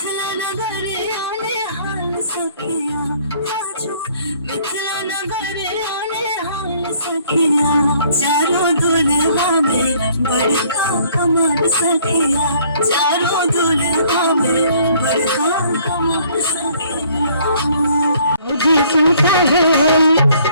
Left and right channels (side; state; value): both; inverted; correlation -0.60